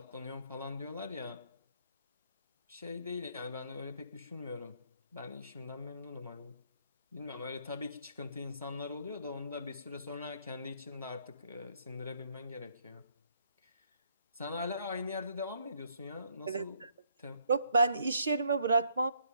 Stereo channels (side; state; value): both; inverted; correlation -0.69